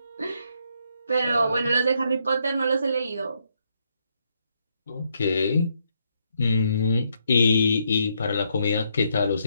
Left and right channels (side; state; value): both; inverted; correlation -0.76